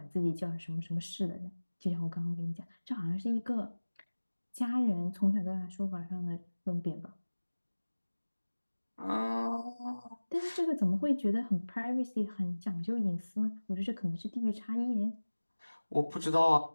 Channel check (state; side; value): inverted; both; correlation -1.00